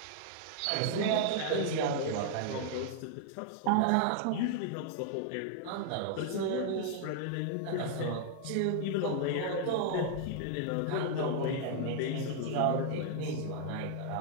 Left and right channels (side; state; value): both; different; correlation -0.01